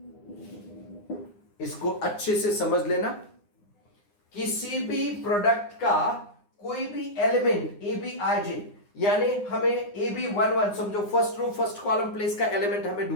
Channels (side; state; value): right; late; 9.7 ms